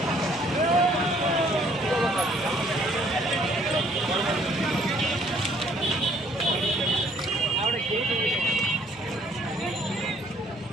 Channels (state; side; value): normal; both; correlation 0.62